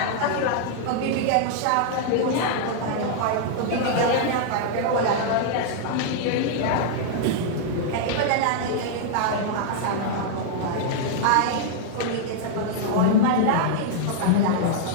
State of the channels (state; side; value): different; both; correlation -0.01